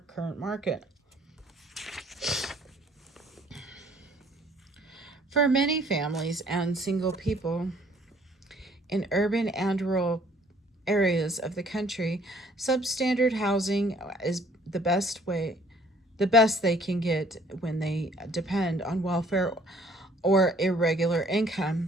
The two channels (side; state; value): both; normal; correlation 0.59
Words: current market. For many families and single people in urban and rural areas of the country, substandard housing is the best they can get when they depend on welfare or irregular